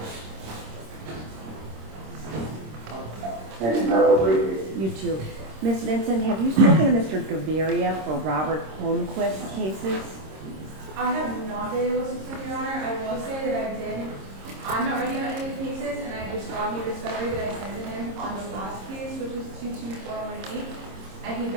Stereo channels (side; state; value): left; late; 26 ms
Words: Thank you, Madam Leader. You too. Ms. Vincent, have you spoken to Mr. Gaviria for Robert Holmquist cases? I have not been able to speak, Your Honor. I will say that I did. I'm not ready on any of the cases, and I just got new discovery that I sent to him on the last case, which is 22418. And he